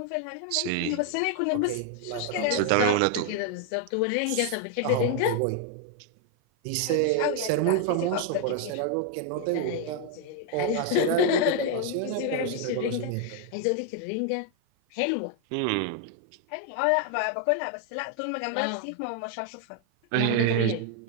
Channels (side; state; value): both; different; correlation 0.00